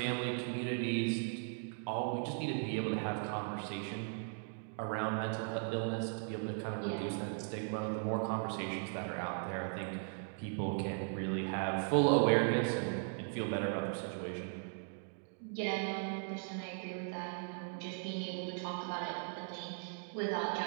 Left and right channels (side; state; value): left; silent; 52 dB below the other